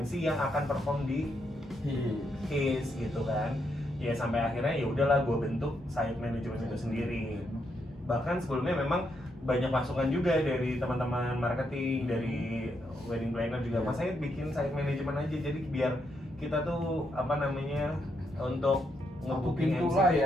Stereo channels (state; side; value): normal; both; correlation 0.79